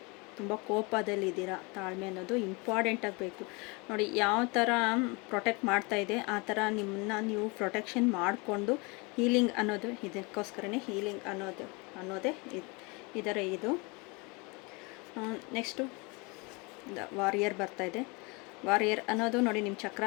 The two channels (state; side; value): quieter; right; 28.7 dB